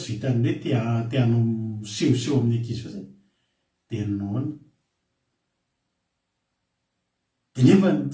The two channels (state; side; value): identical; both; correlation 1.00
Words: vitan'ny hoe teanao misehoseho amin'ny ankizy fa zay dia naona dia nefa